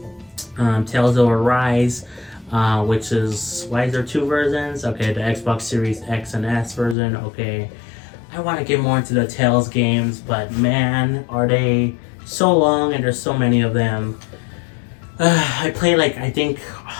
Tales of Arise, which is, why is there two versions? Okay, the Xbox Series X and S version. Okay, I want to get more into the Tales games, but man, are they so long and there's so many of them. I played like, I think,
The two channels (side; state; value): right; drops out; at 7.0 s